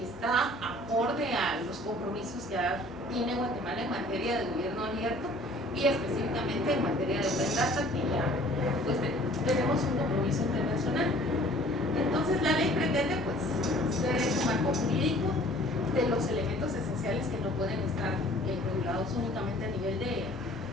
está acorde a los compromisos que tiene Guatemala en materia de gobierno abierto y específicamente en materia de Open Data, que ya pues tenemos un compromiso internacional. Entonces la ley pretende pues ser ese marco jurídico de los elementos esenciales que no pueden estar regulados únicamente a nivel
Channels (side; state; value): both; normal; correlation 0.52